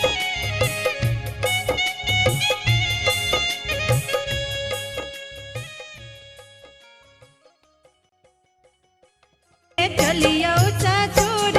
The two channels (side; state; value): both; identical; correlation 1.00